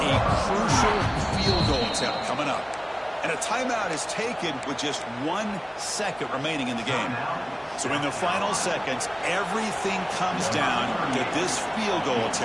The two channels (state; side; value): identical; both; correlation 1.00